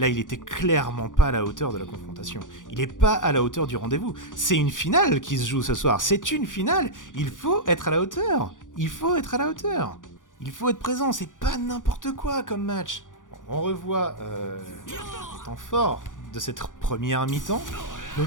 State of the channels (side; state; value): right; late; 0.88 ms